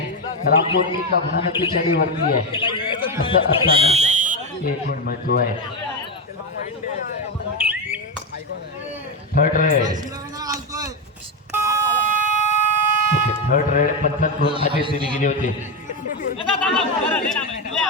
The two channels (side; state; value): both; normal; correlation 0.10